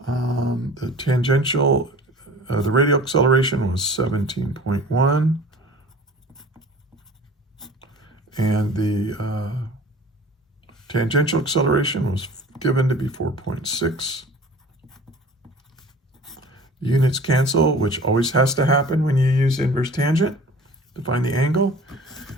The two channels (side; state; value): both; normal; correlation 0.44